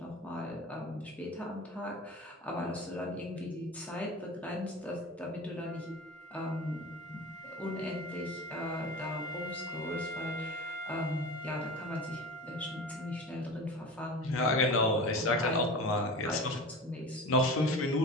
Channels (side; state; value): both; normal; correlation 0.33